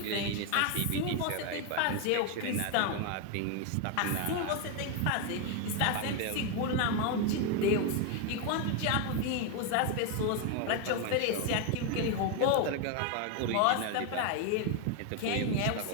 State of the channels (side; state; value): both; different; correlation 0.01